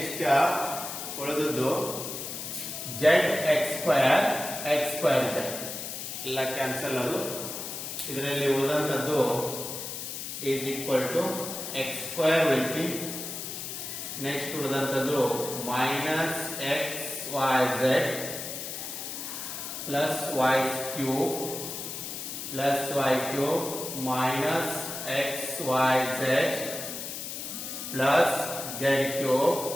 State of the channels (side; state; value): left; noise; hiss, 7 dB below the sound